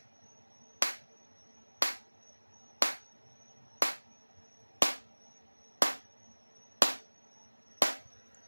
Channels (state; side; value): inverted; both; correlation -1.00